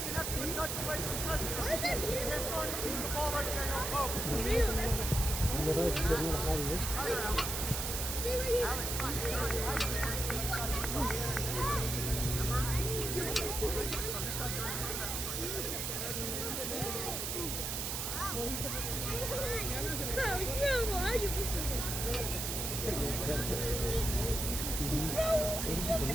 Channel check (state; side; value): noise; right; hiss, 2 dB below the sound